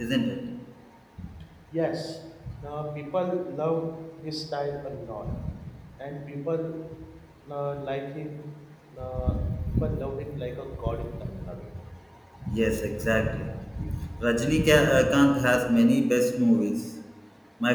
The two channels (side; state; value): both; identical; correlation 1.00